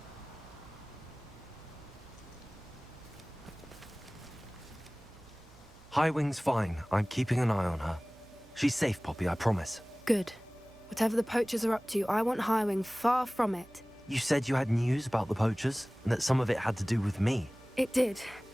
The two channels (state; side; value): noise; right; hum, 24 dB below the sound